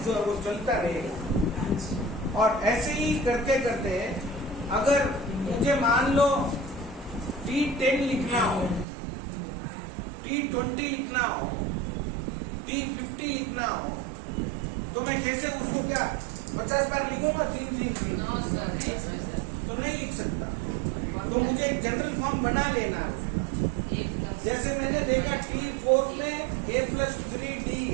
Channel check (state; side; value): drops out; left; at 8.8 s